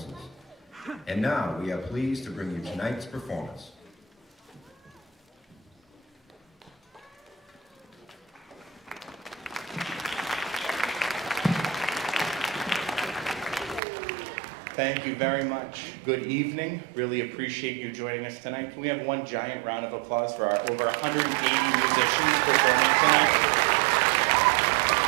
And now, we are pleased to bring you tonight's performance. Thank you very much. Good evening. Really appreciate you joining us tonight. Can we have one giant round of applause for our over 180 musicians performing tonight?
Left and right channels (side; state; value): left; drops out; at 13.8 s